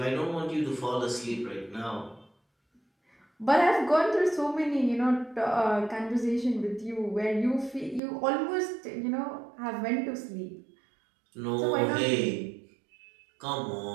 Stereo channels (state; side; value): drops out; left; at 8.0 s